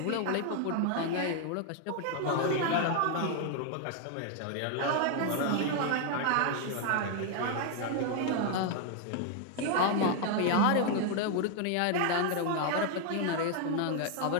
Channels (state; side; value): different; both; correlation 0.00